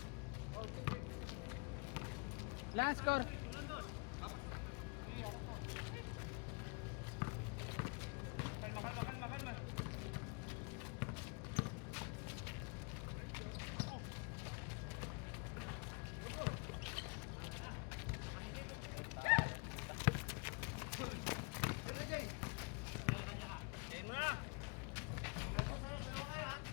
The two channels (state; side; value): quieter; right; 32.7 dB